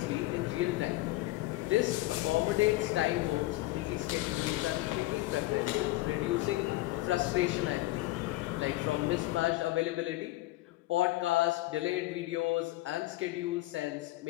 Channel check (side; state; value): right; quieter; 18.2 dB